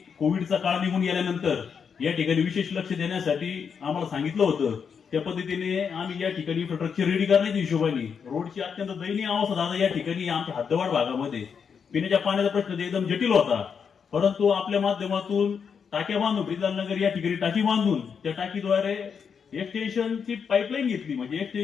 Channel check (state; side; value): quieter; right; 6.6 dB